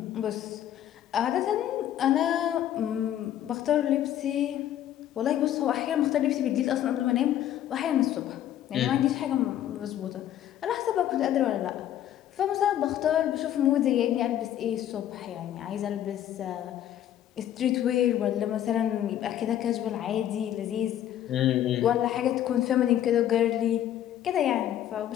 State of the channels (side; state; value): right; quieter; 11.4 dB